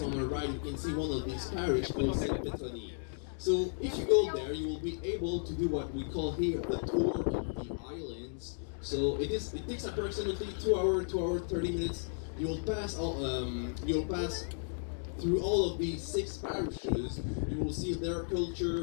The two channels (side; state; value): right; silent; digital silence